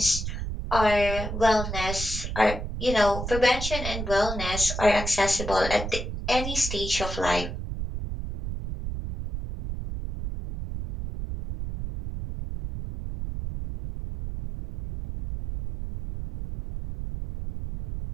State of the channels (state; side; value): noise; right; rumble, 5 dB below the sound